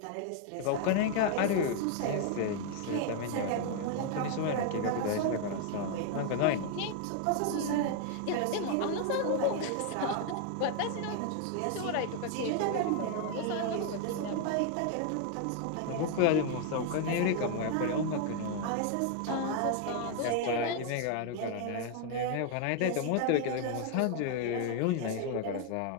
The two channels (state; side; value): different; both; correlation 0.00